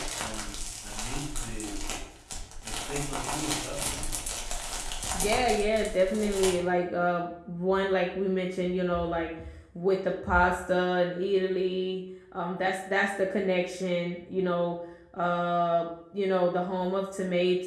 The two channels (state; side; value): identical; both; correlation 1.00